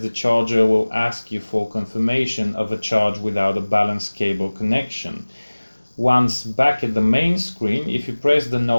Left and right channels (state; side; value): inverted; both; correlation -1.00